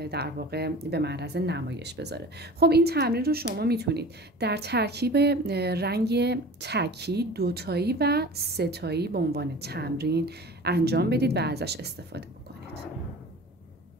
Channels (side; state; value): both; normal; correlation 0.39